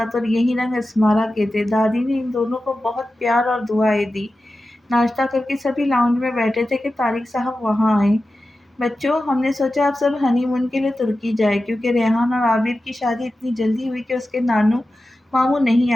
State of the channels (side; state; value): both; normal; correlation 0.93